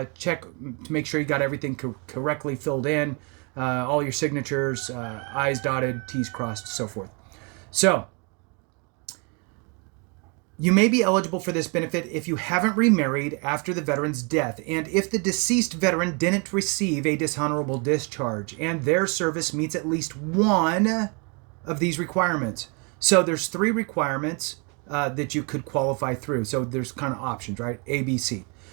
make sure you got everything correctly filled in, all your signatures, I's dotted, T's crossed, so forth. So, You may be eligible for this benefit if you haven't remarried after the veteran's death and if the deceased veteran didn't receive a dishonorable discharge and their service meets at least one of these requirements. So there's 3 requirements that you could qualify through. So there's kind of options, right? A, B, C.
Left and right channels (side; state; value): left; quieter; 33.4 dB